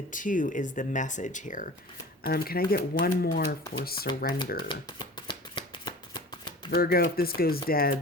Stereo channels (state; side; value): normal; both; correlation 0.39